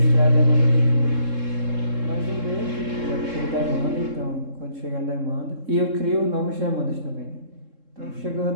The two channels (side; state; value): left; late; 3.7 ms